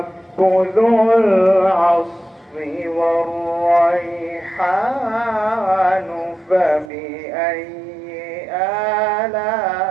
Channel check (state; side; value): drops out; left; at 6.9 s